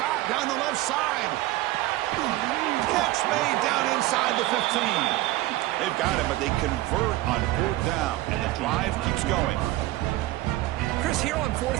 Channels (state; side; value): quieter; left; 17.1 dB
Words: down the left side. Catch made down inside the 15. They've got him, but they convert on 4th down, and the drive keeps going. Chris, here on